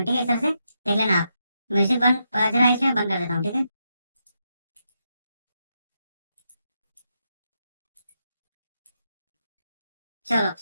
ठीक है। इस तरह से देख लेना आप। म्यूजिक बंद बज रहा है इसलिए मैं बंद कर देता हूँ, ठीक है। चलो,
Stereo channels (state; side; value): inverted; both; correlation -0.83